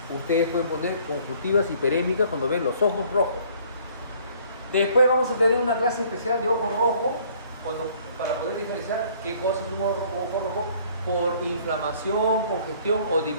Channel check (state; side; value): inverted; both; correlation -0.58